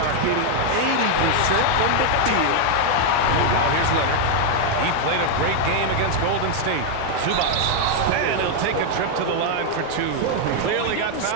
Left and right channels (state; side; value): different; both; correlation 0.00